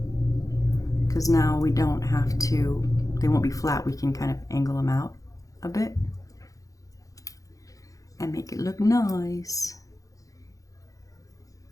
because now we don't have to, they won't be flat. We can kind of angle them out a bit and make it look nice.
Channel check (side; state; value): right; late; 0.17 ms